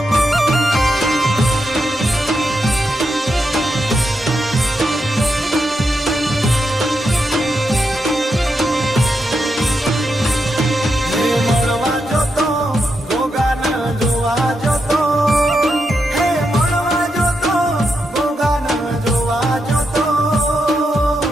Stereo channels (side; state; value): both; normal; correlation 0.84